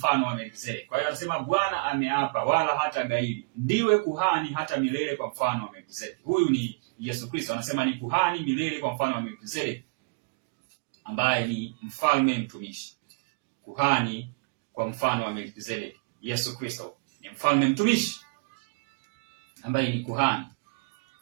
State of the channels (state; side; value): quieter; left; 31.9 dB